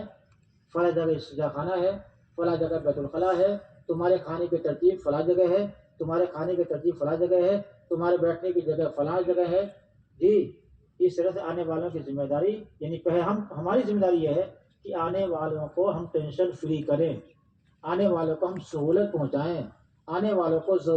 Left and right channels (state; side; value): identical; both; correlation 1.00